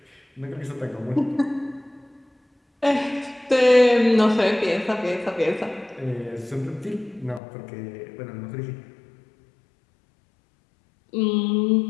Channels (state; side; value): drops out; right; at 7.4 s